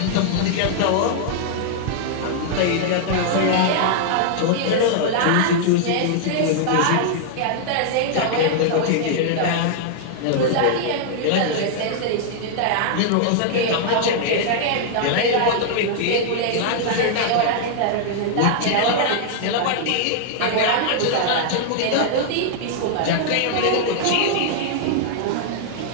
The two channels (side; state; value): both; different; correlation -0.01